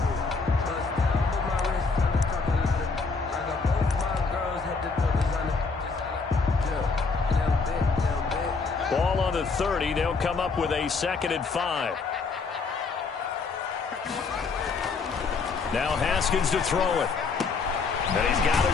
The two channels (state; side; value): quieter; right; 4.6 dB